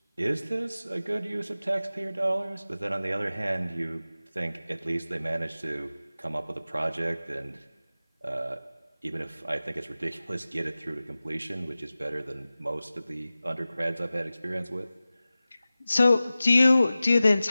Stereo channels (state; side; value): inverted; both; correlation -0.96